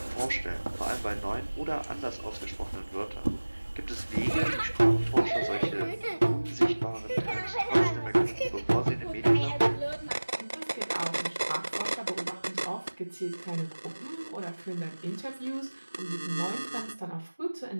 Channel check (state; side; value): inverted; both; correlation -1.00